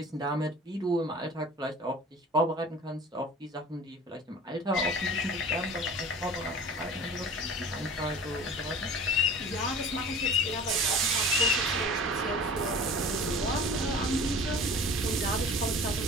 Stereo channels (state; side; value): normal; both; correlation 0.41